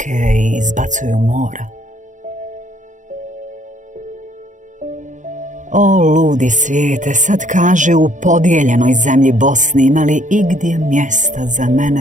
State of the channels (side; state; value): left; late; 0.36 ms